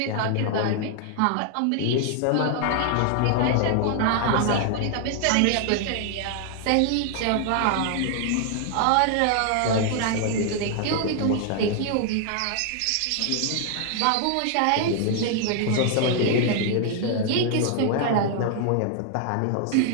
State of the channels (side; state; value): both; different; correlation 0.00